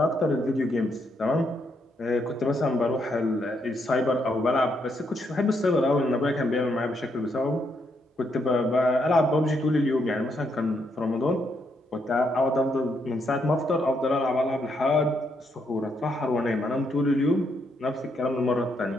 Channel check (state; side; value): normal; both; correlation 0.76